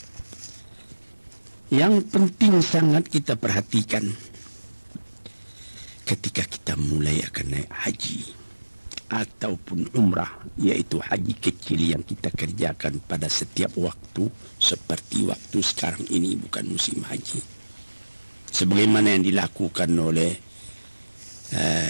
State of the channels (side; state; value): both; inverted; correlation -1.00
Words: Yang penting sangat kita perhatikan ketika kita mulai akan naik haji ataupun umrah, yaitu haji kecil yang kita kerjakan pada setiap waktu, seperti waktu sekarang ini bukan musim haji, sebagaimana yang dilakukan oleh